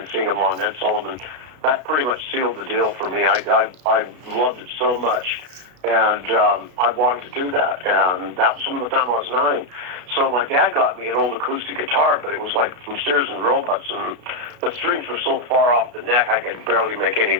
seeing them on Ed Sullivan. That pretty much sealed the deal for me. I loved it so much, and I wanted to do that. And that was from the time I was 9. So my dad got me an old acoustic guitar, but it was like from Sears and Roebuck's, and the strings were so far off the neck I could barely make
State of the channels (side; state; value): left; late; 33 ms